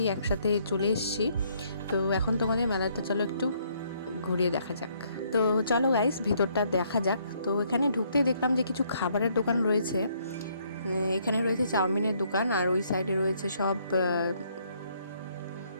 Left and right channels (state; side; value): inverted; both; correlation -0.68